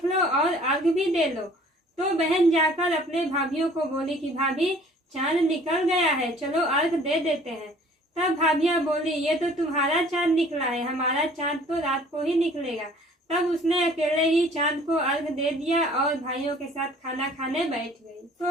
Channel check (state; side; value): normal; both; correlation 0.53